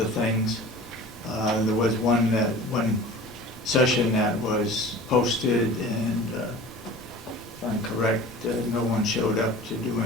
things. There was one session that was posted, and if I'm correct, no one showed up to do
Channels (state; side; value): normal; both; correlation 0.41